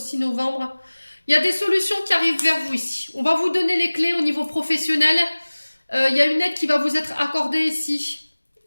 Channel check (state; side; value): inverted; both; correlation -1.00